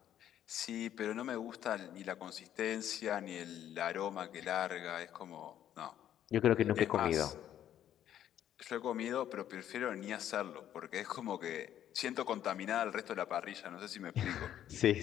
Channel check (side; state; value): right; quieter; 11.0 dB